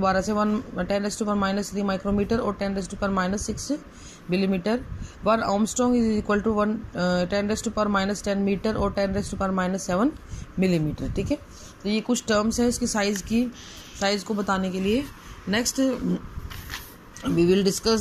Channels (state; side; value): identical; both; correlation 1.00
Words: से, 10⁻³ माइक्रोमीटर और 10⁻⁶ millimetre. 1 Armstrong is equal to 10⁻10 metre और 10⁻7 मिलीमीटर. ठीक है, तो ये कुछ टर्म्स है इसकी साइज को बताने के लिए. Next we will